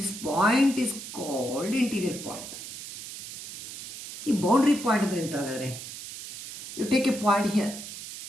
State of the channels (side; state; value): right; noise; hiss, 11 dB below the sound